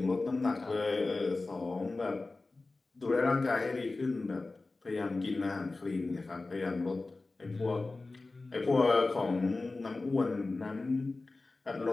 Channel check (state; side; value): quieter; right; 3.4 dB